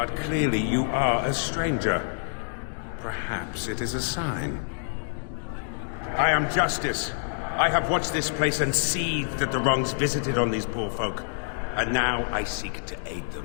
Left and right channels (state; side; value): silent; right; digital silence